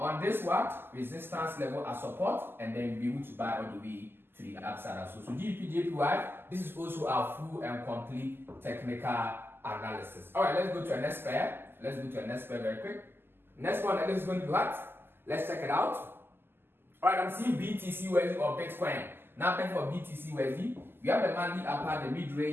this resistance level as support, and then be able to buy all the way to the upside as well. So GBP JPY, this is also our full and complete technical analysis. Alright, let's go to our next pair. Let's go to our next pair very quick. Next one, that is going to be what? Let's check it out. Alright, I'm seeing BTC USD or Bitcoin. Now, for BTC USD, we have the monthly upper, the mid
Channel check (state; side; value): late; left; 0.11 ms